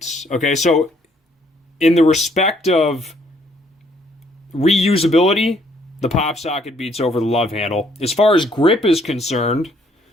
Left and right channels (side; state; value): both; normal; correlation 0.66